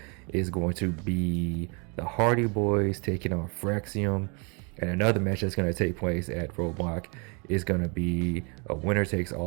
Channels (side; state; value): left; quieter; 33.4 dB